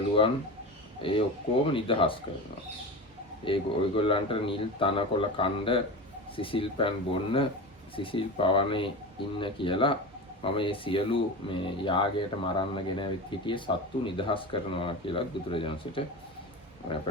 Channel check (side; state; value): both; normal; correlation 0.27